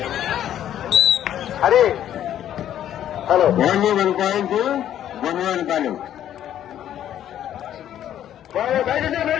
Hari hello only 1 point గొప్పవాళ్ళు పాలెం.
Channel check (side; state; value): right; quieter; 11.0 dB